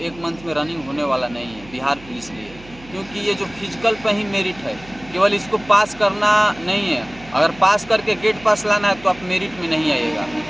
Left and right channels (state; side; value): noise; right; hum, 21 dB below the sound